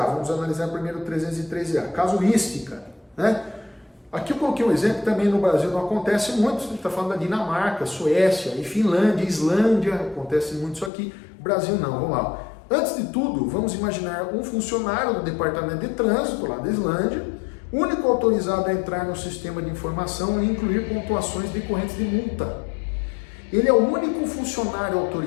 vamos analisar primeiro o 313A, casuística, né? Aqui eu coloquei um exemplo, também no Brasil não acontece muito, a gente está falando da Dinamarca, Suécia, e Finlândia, Islândia, acontece muito isso aqui, Brasil não, vamos lá. Antes de tudo, vamos imaginar um funcionário do Departamento de Trânsito, lá da Islândia, único autorizado a entrar no sistema de informação e incluir pontuações decorrentes de multa. Ele é o único funcionário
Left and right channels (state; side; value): drops out; right; at 10.9 s